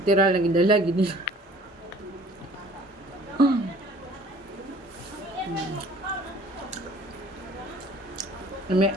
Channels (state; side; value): normal; both; correlation 0.52